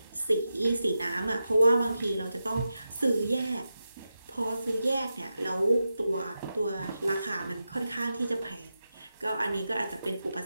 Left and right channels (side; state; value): both; inverted; correlation -0.89